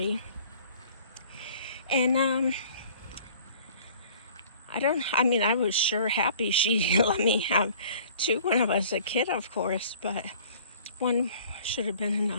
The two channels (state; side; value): inverted; both; correlation -0.51